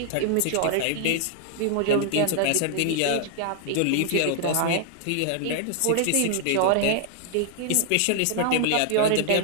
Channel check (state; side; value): different; both; correlation 0.00